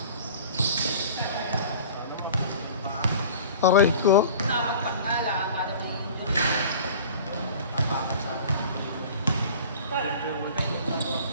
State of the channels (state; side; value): inverted; both; correlation -0.42